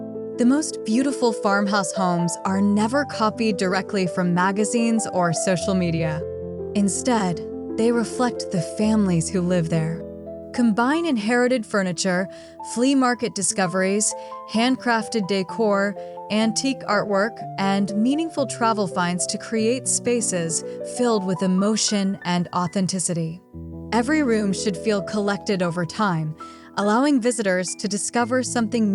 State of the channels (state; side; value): identical; both; correlation 1.00